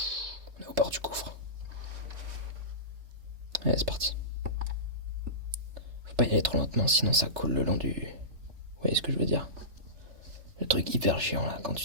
est au bord du gouffre. Allez, c'est parti. Faut pas y aller trop lentement, sinon ça coule le long du... Vous voyez ce que je veux dire? Le truc hyper chiant là, quand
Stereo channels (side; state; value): left; late; 3.3 ms